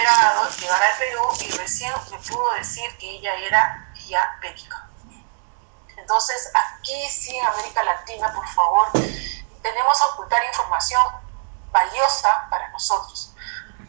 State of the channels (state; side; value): silent; left; digital silence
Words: llegar al Perú y recién me pudo decir que ella era diabética. Entonces, aquí sí, en América Latina, por favor, tenemos a ocultar información valiosa para nosotros.